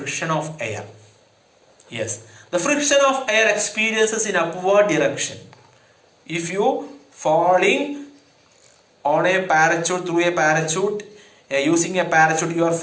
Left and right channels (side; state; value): both; identical; correlation 1.00